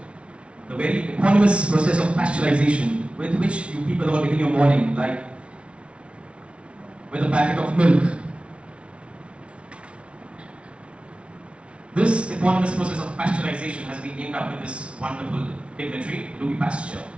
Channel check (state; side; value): late; left; 0.060 ms